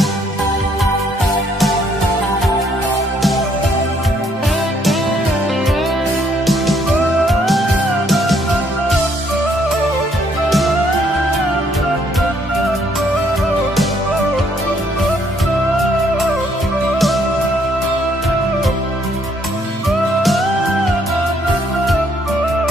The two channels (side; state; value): both; normal; correlation 0.68